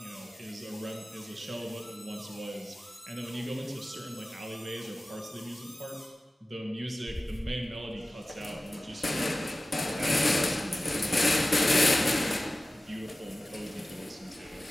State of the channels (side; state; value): both; normal; correlation 0.96